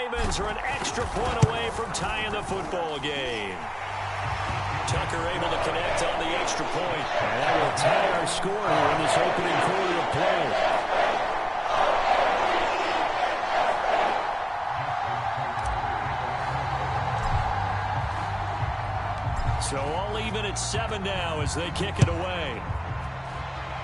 are an extra point away from tying the football game. Tucker able to connect on the extra point. And that will tie our score here in this opening quarter of play. So all even at 7 now as they kick it away.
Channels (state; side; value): identical; both; correlation 1.00